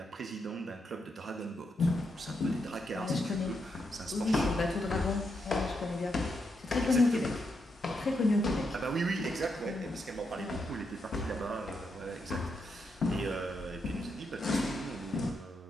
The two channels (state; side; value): normal; both; correlation 0.81